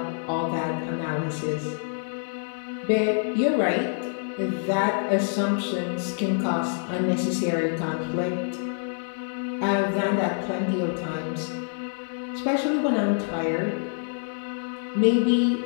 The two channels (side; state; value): right; silent; 56 dB below the other